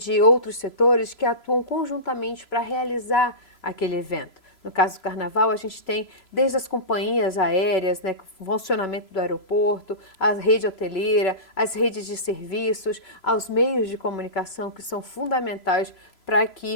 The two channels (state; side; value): late; right; 3.0 ms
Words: outros setores que atuam conjuntamente para realizar aquele evento. No caso do Carnaval, a gente tem desde as companhias aéreas, né, o funcionamento do aeroporto, a rede hoteleira, as redes de serviços, aos meios de comunicação que são fundamentais para